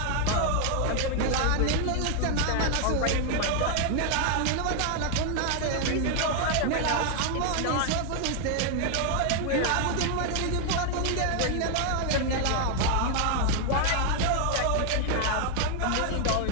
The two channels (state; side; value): different; both; correlation 0.00